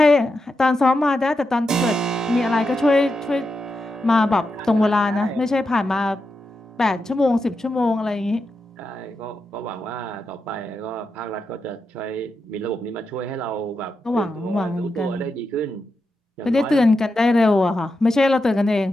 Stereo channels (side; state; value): both; normal; correlation 0.87